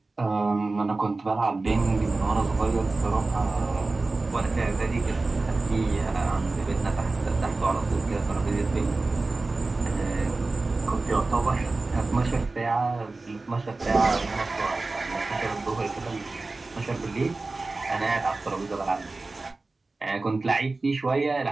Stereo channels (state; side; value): quieter; left; 3.4 dB